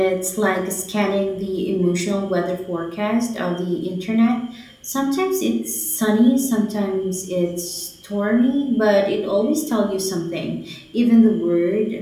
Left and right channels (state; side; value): identical; both; correlation 1.00